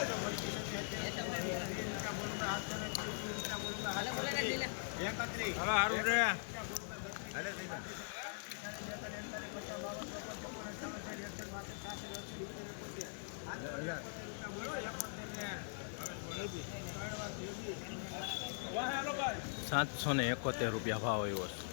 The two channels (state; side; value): silent; right; digital silence